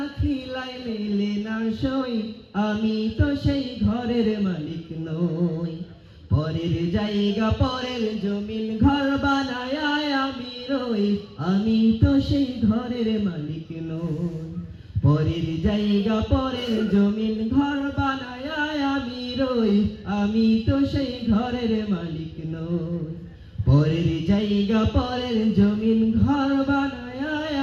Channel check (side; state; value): both; identical; correlation 1.00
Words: মেলে না সই, আমি তো সেই ঘরের মালিক নই। পরের জায়গা পরের জমিন ঘর বানায় আমি রই, আমি তো সেই ঘরের মালিক নই। পরের জায়গা পরের জমিন ঘর বানায় আমি রই, আমি তো সেই ঘরের মালিক নই। পরের জায়গা পরের জমিন ঘর বানায়